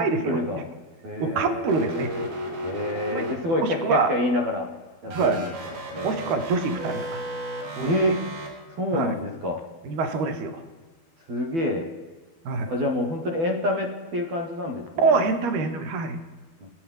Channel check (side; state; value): left; late; 12 ms